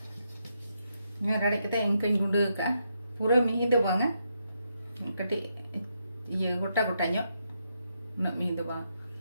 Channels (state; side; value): inverted; both; correlation -0.81